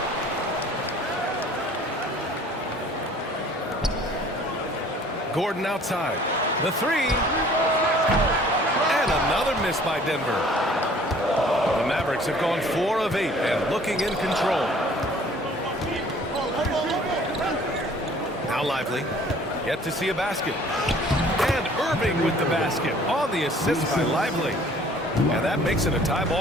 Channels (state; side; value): normal; both; correlation 0.53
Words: Gordon outside. The 3. And another miss by Denver. The Mavericks have gone 4 of 8 and looking in control. Now Lively. Yet to see a basket. And Irving with the basket on the assist by Lively. And that makes it a tie